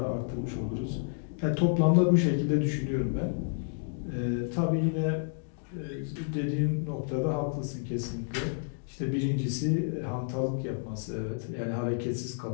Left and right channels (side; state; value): right; silent; digital silence